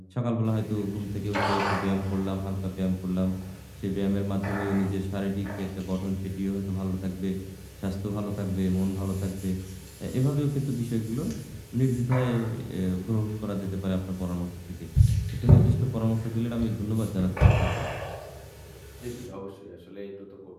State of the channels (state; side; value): identical; both; correlation 1.00